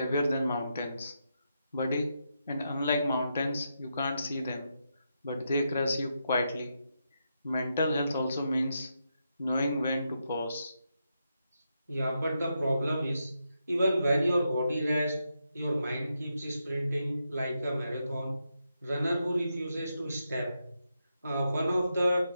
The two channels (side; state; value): both; inverted; correlation -0.84